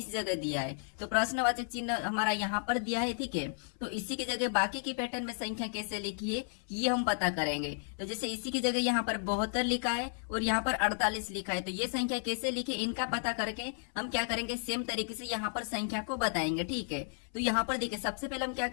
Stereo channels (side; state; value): right; silent; 56 dB below the other